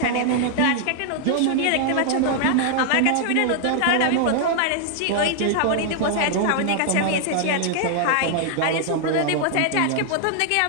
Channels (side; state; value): both; different; correlation 0.00